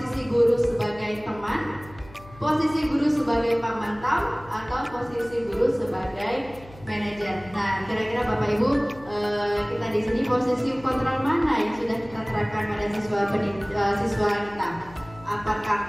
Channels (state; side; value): noise; left; hum, 20 dB below the sound